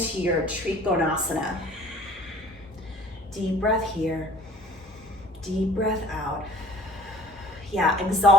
your Trikonasana. Deep breath here. Deep breath out. Yeah,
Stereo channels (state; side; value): normal; both; correlation 0.49